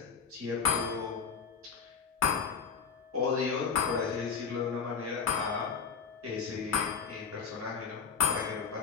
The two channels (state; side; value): quieter; right; 6.0 dB